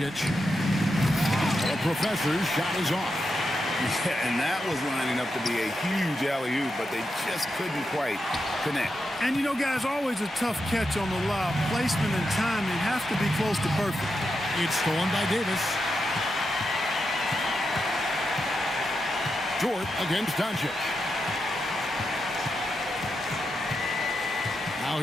The professor's shot is off. Yeah, and that was lining up to be a huge alley-oop, but they just couldn't quite connect. And, you know, guys, always a tough catch on the lob. Placement and timing have to be close to perfect. It's stolen by Davis. Dort against Doncic. Now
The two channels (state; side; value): normal; both; correlation 0.86